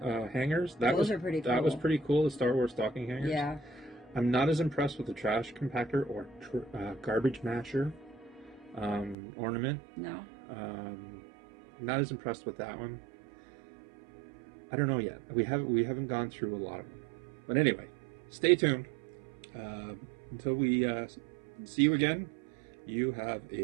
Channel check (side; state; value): left; drops out; at 9.2 s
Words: hangers. Those are pretty That was cool. pretty cool. The Star Wars stocking hangers. Yeah. I'm not as impressed with the trash compactor or garbage masher ornament. No. Not as impressed with that one. I don't know yet. We haven't gone through a lot of them. But anyway, stay tuned. Until we see you again, you have